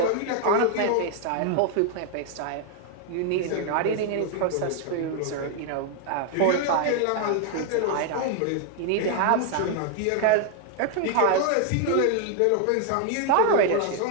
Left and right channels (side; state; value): both; different; correlation 0.00